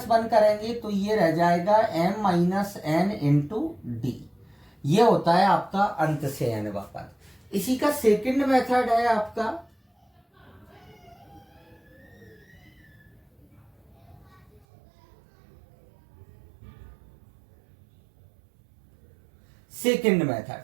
1 करेंगे तो ये रह जाएगा m minus n into D. ये होता है आपका अंत से nवा पद। इसी का सेकंड मेथड है आपका सेकंड मेथड।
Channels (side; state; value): left; drops out; at 14.7 s